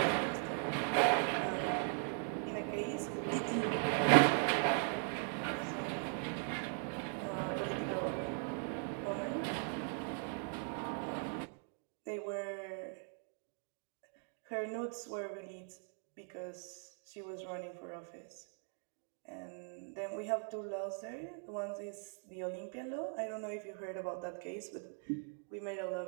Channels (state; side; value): silent; left; 51 dB below the other